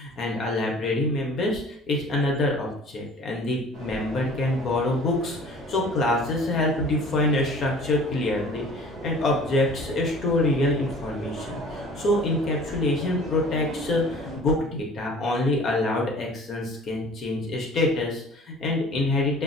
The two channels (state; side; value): normal; both; correlation 0.47